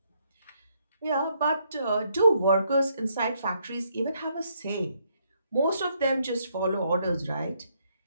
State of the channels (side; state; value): both; inverted; correlation -0.73